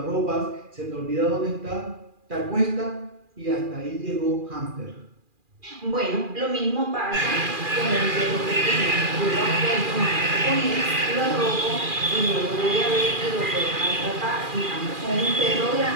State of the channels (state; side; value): late; left; 2.4 ms